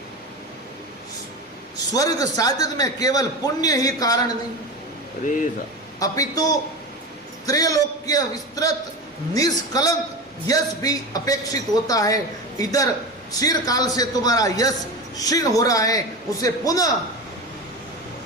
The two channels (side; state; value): both; normal; correlation 0.25